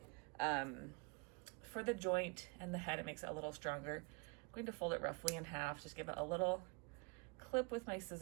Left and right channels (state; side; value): quieter; left; 30.6 dB